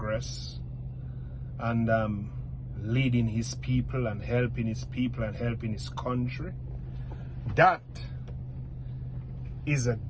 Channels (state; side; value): identical; both; correlation 1.00